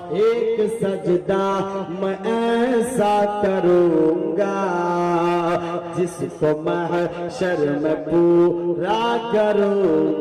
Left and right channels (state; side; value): identical; both; correlation 1.00